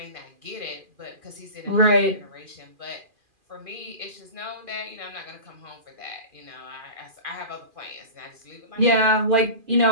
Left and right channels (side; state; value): left; late; 2.4 ms